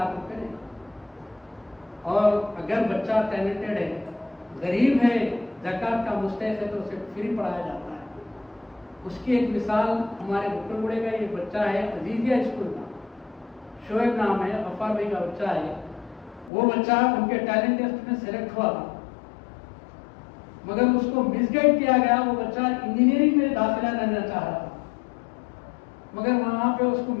روپے. اور اگر بچہ ٹیلنٹڈ ہے, غریب ہے, زکوٰۃ کا مستحق ہے تو اسے فری پڑھایا جاتا ہے. اس کی ایک مثال ہمارے بکر گڑے کا یہ بچہ ہے عزیزیہ اسکول کا, شعیب نام ہے, غفار بھائی کا بچہ ہے. وہ بچہ ان کے ٹیلنٹ ٹیسٹ میں سلیکٹ ہوا تھا مگر اس کو مس گائیڈ کیا گیا. وہ بچہ انجینئرنگ میں داخلہ لینا چاہ رہا تھا مگر وہاں پہ اس کو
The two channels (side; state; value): right; drops out; at 16.5 s